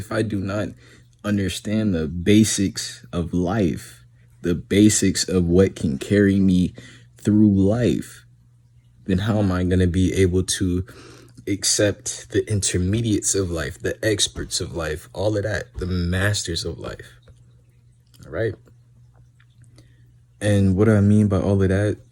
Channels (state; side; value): identical; both; correlation 1.00